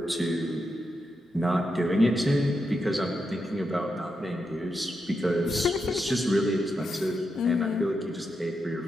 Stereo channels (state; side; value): normal; both; correlation 0.85